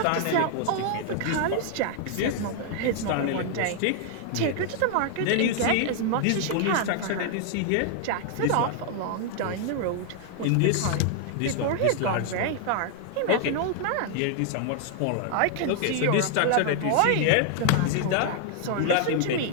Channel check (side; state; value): both; different; correlation 0.00